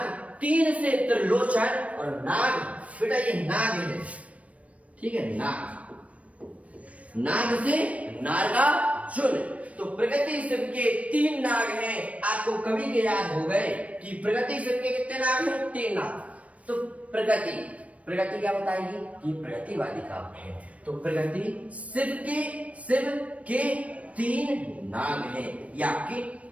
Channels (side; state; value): left; late; 0.065 ms